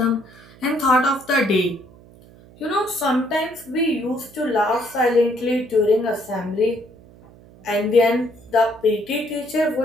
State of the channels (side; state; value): right; noise; hum, 24 dB below the sound